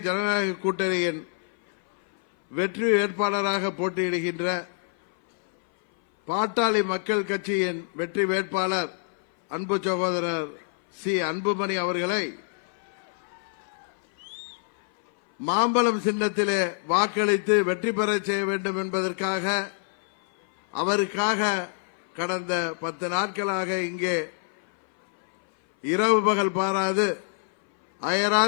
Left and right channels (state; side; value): silent; right; 58 dB below the other